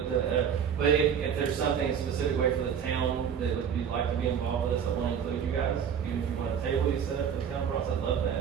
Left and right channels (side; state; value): left; quieter; 7.9 dB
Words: if there's something specific way for the town that you'd like to be involved with us, I want to include you guys. Even if you want a table you set up for the town process, I'd love